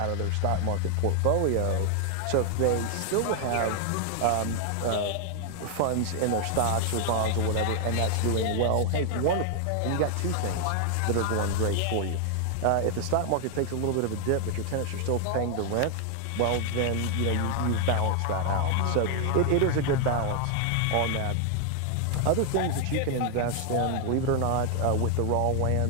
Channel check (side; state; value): both; different; correlation 0.00